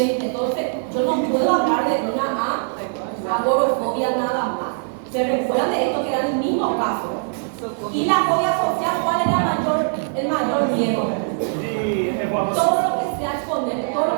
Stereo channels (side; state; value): left; silent; digital silence